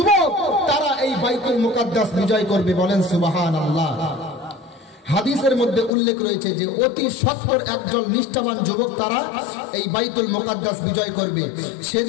তারা এই বাইতুল মুকাদ্দাস বিজয় করবে, বলেন সুবহানাল্লাহ। হাদিসের মধ্যে উল্লেখ রয়েছে যে অতি সত্বর একজন নিষ্ঠাবান যুবক তারা এই বাইতুল মুকাদ্দাস বিজয় করবে।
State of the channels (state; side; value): drops out; right; at 5.9 s